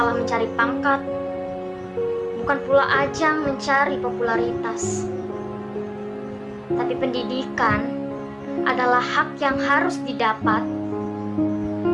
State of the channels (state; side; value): identical; both; correlation 1.00